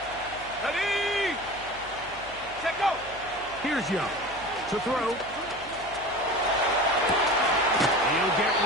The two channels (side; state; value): left; noise; hum, 21 dB below the sound